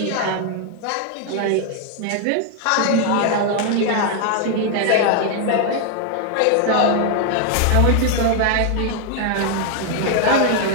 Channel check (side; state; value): both; different; correlation 0.00